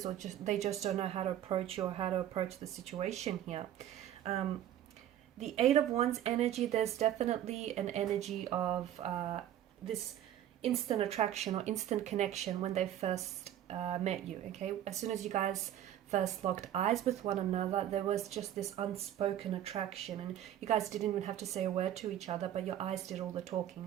or they just don't know how to approach you or how to approach the situation here. The Eight of Wands energy, there's definitely an energy of this instant attraction or instant connection when they first met you, okay? As soon as you guys first locked eyes with one another, there was just this unspoken attraction, and you guys didn't even have to say a word to each other, but your eyes did all the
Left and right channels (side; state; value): left; quieter; 11.5 dB